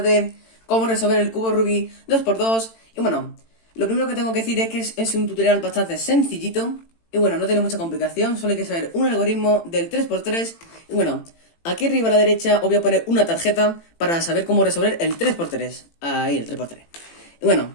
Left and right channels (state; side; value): late; right; 18 ms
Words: de cómo resolver el cubo Rubik 2x2. Y bueno, lo primero que tengo que decir es que es un tutorial bastante sencillito. Y bueno, no tiene mucha complicación, solo hay que saber un algoritmo del 3x3. Y bueno, aquí arriba a la derecha os voy a poner una tarjeta para saber cómo resolver el 3x3. Ahí, el 3x3. Y bueno,